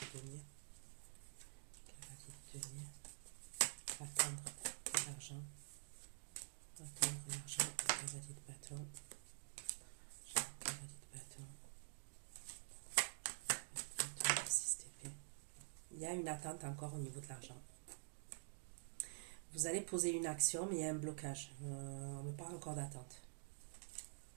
de denier. Cavalier de denier. Attendre l'argent. Attendre l'argent. Cavalier de bâton. Cavalier de bâton. 6 d'épée. Il y a une attente encore au niveau de l'argent. Vous allez poser une action, mais il y a un blocage. On me parle encore d'attente.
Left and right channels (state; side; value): silent; left; digital silence